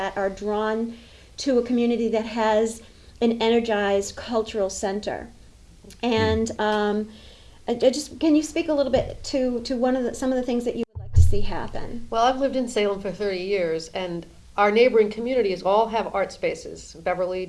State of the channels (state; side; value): identical; both; correlation 1.00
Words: are drawn to a community that has an energized cultural center. And can you speak a little bit to some of the things that you would like to see happen? Well, I've lived in Salem for 30 years, and our neighboring communities all have art spaces. Beverly,